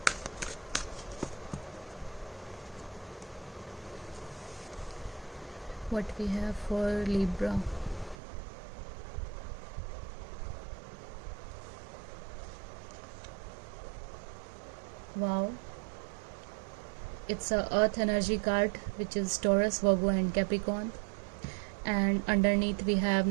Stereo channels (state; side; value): drops out; left; at 8.2 s